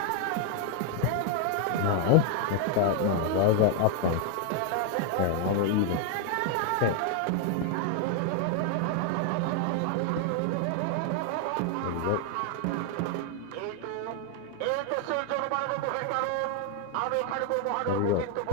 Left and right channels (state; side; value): different; both; correlation 0.00